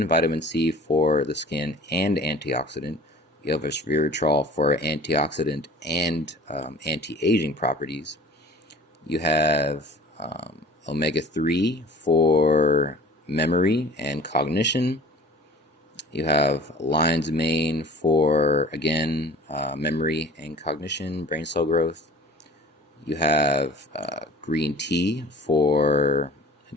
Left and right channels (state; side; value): normal; both; correlation 0.43